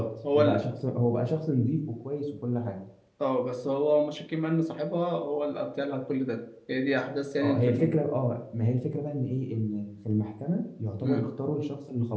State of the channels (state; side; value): identical; both; correlation 1.00